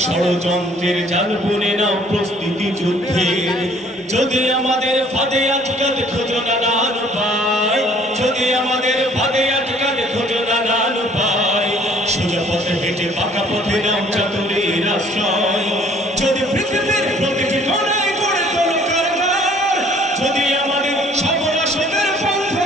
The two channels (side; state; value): both; normal; correlation 0.57